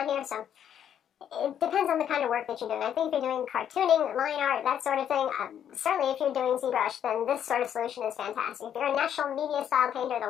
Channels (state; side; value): quieter; right; 9.4 dB